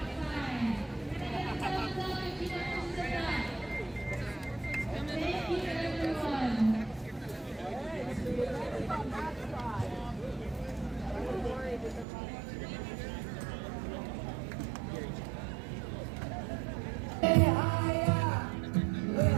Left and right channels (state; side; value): drops out; left; at 12.1 s